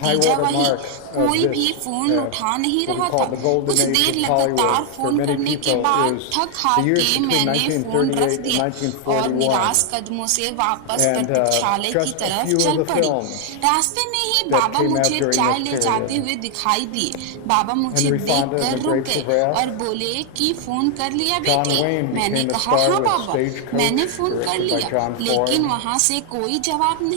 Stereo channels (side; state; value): both; different; correlation 0.00